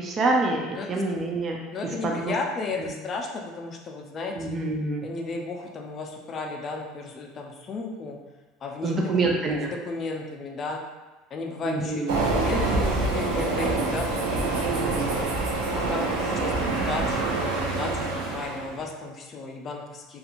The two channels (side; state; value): both; normal; correlation 0.44